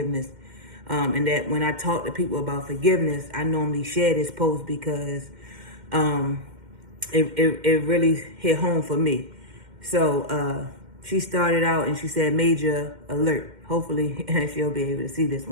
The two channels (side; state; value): left; late; 2.1 ms